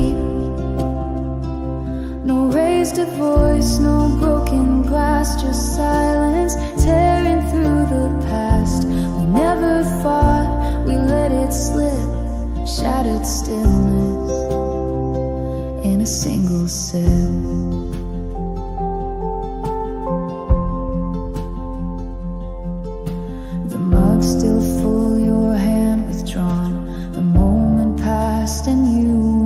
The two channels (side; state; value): both; identical; correlation 1.00